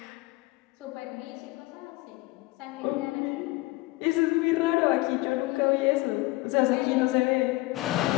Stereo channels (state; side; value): quieter; right; 20.9 dB